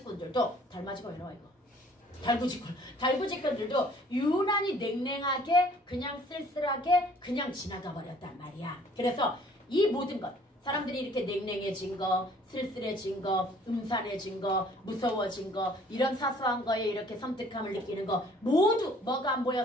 달마직은 왜 나와 이거 달구직꾼들도 유난히 냉랭하게 그냥 쓸쓸하게 그냥 지나가 버렸단 말이야. 그래서 이 모든 것 사람들이 이렇게 냉랭해진 거, 쓸쓸해진 거, 음산해진 거, 무서워진 거 이런 사소한 거에 이렇게 섬뜩함을 느끼는 거 모두 뭐가 안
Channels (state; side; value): normal; both; correlation 0.56